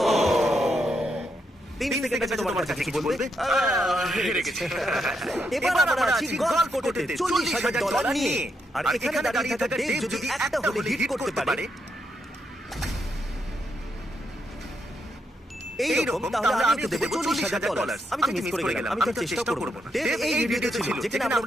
ও 3 সেকেন্ড আছে তোমার কাছে কিছু বলবে? হেরে গেছি। এবার আমরা আছি গলফ কোর্টেতে $40,000 নিয়ে। আর এখানে দাঁড়িয়ে থাকা ডেভ যদি একটা হলে হিট করতে পারে এইরকম, তাহলে আমি ওকে দেবো $40,000। আমি তো মিস করে গেলাম, আমি তো চেষ্টা করবো না। ডেভ এই ভিডিওতে ছিল যেখানে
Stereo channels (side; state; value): both; normal; correlation 0.80